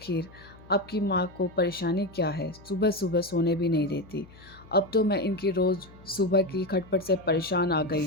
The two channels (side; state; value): left; noise; hum, 22 dB below the sound